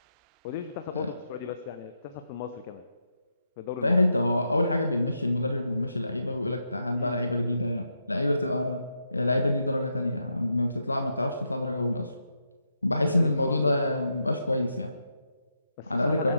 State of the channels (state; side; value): inverted; both; correlation -0.84